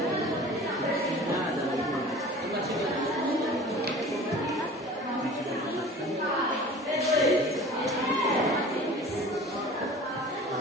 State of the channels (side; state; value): both; normal; correlation 0.42